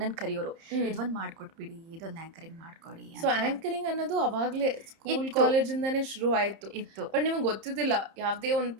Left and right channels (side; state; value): left; late; 30 ms